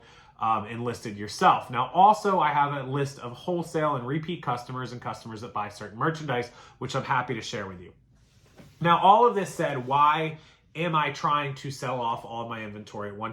and listed yourself. Now, also, I have a list of wholesale and repeat customers and customers that buy certain merchandise, which I'm happy to share with you. Now, all of this said, why am I trying to sell off all of my inventory at one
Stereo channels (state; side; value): identical; both; correlation 1.00